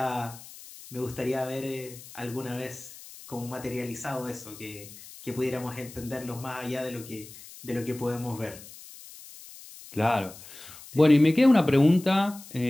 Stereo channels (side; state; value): left; noise; hiss, 17 dB below the sound